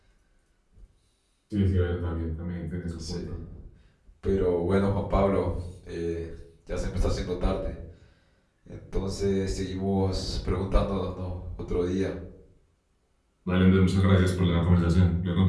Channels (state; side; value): identical; both; correlation 1.00